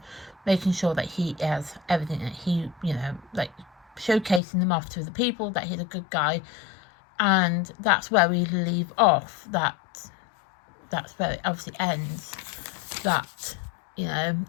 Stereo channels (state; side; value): drops out; right; at 4.4 s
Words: making sure that he has everything that he, showcasing him off to the people that he's a good guy. And that's where we leave off. That's where it obviously ends. That,